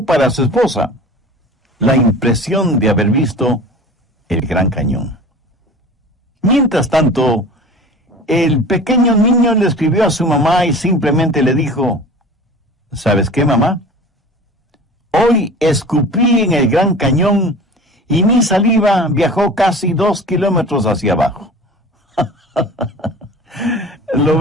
para su esposa la impresión de haber visto el Gran Cañón. Mientras tanto, el pequeño niño le escribió a su mamá y simplemente le dijo: ¿sabes qué, mamá? Hoy escupí en el Gran Cañón y mi saliva viajó casi 2 kilómetros hacia abajo. ¿Lo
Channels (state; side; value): normal; both; correlation 0.39